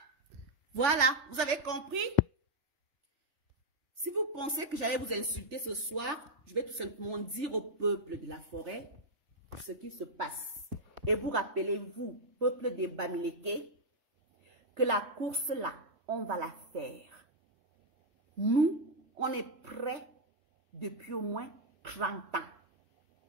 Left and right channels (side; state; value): left; late; 3.4 ms